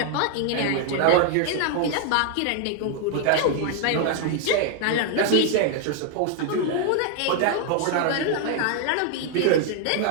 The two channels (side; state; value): both; different; correlation 0.00